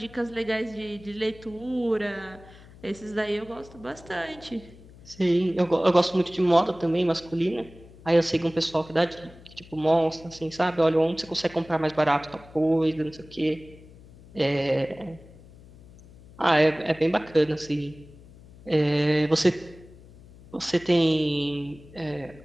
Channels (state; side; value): noise; left; hum, 21 dB below the sound